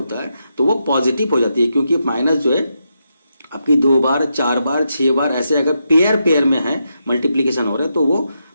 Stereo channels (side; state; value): both; inverted; correlation -0.84